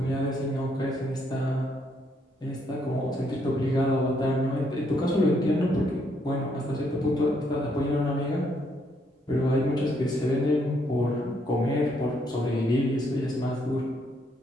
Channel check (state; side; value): normal; both; correlation 0.72